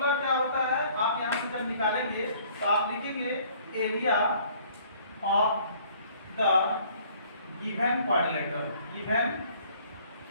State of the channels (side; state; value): both; inverted; correlation -0.57